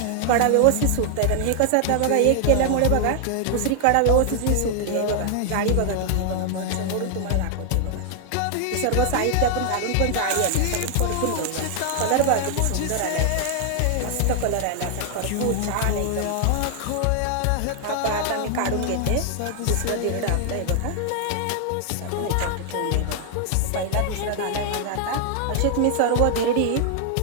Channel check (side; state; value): both; different; correlation 0.00